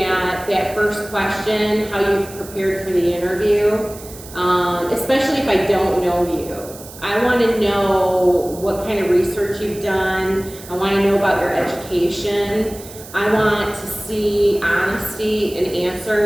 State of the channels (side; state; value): right; noise; hiss, 17 dB below the sound